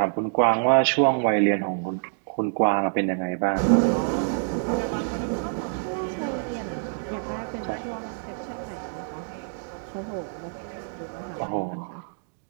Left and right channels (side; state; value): left; silent; digital silence